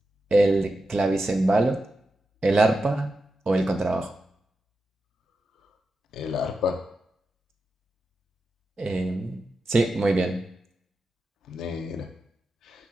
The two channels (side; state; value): both; normal; correlation 0.90